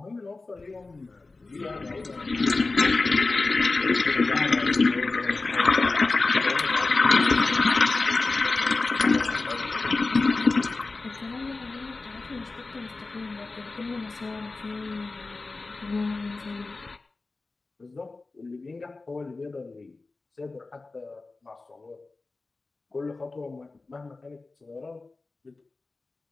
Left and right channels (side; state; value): right; quieter; 3.6 dB